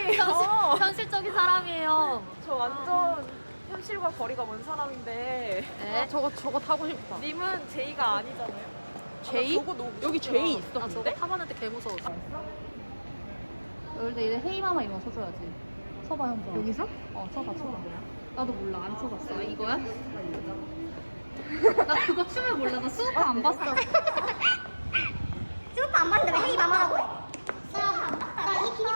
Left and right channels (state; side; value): inverted; both; correlation -1.00